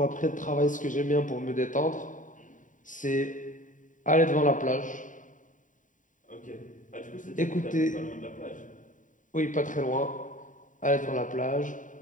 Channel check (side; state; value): right; late; 0.37 ms